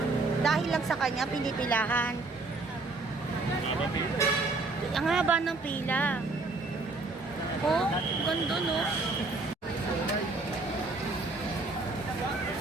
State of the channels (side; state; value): left; quieter; 3.4 dB